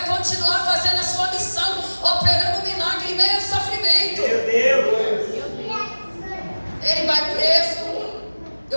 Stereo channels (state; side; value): inverted; both; correlation -1.00